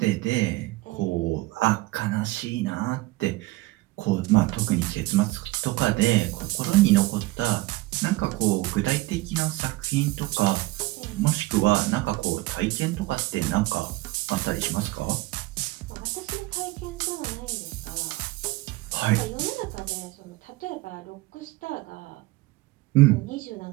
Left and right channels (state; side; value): quieter; left; 19.6 dB